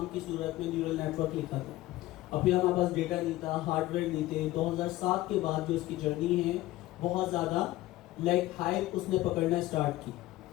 की सूरत में न्यूरल नेटवर्क लिखा था, अभी हमारे पास डेटा नहीं था, हार्डवेयर नहीं थे। 2007 के बाद जो इसकी जर्नी है बहुत ज़्यादा लाइक हाइप उसने पकड़ना स्टार्ट की।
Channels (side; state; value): right; quieter; 16.6 dB